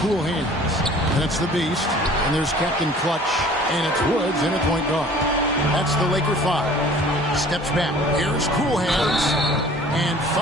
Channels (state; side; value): normal; both; correlation 0.49